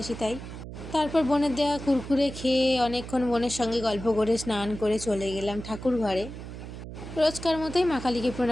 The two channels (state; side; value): noise; right; hum, 11 dB below the sound